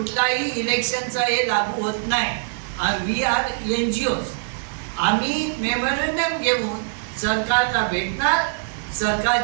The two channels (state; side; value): silent; left; digital silence